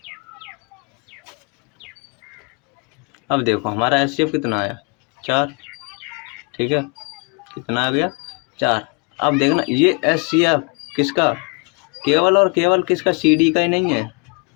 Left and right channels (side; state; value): right; quieter; 30.6 dB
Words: अब देखो हमारा HCF कितना आया, 4। ठीक है, कितना आ गया, 4। अब देखना ये HCF किसका, केवल और केवल किसका, CD का ही नहीं है।